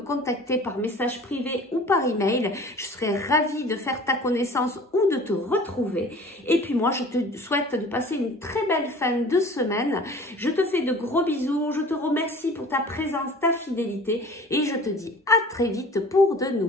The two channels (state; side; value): normal; both; correlation 0.44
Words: par message privé ou par email. Je serai ravie de faire ta connaissance ou de te retrouver. Et puis moi, je te souhaite de passer une très belle fin de semaine. Je te fais de gros bisous. Je te remercie pour ta présence, ta fidélité et je te dis à très vite pour de